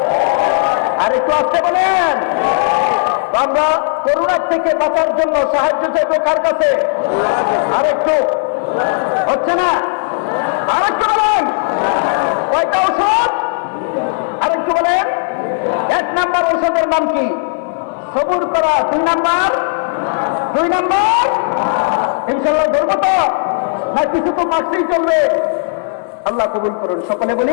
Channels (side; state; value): right; silent; digital silence